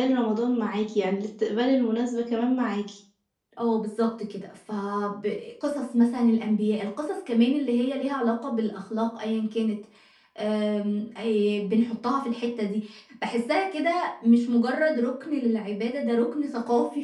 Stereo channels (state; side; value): identical; both; correlation 1.00